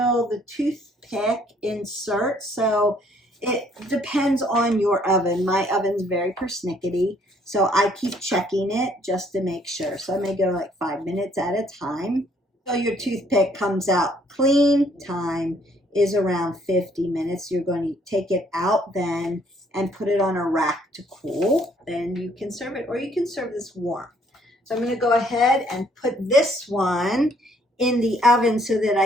the toothpick inserts. So it depends on your oven. My oven's very persnickety, so I keep checking it just to make sure. So I may go like 5 minutes at a time. So your toothpick comes out clean. Time is around 50 minutes. You're going to take it out then and put it on a rack to cool. Then you can serve it, or you can serve this warm. So I'm going to go ahead and put this one in the oven so that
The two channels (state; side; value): normal; both; correlation 0.64